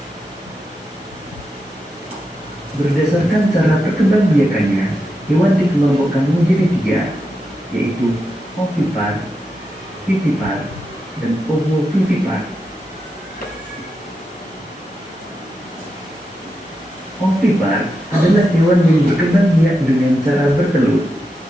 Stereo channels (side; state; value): both; normal; correlation 0.87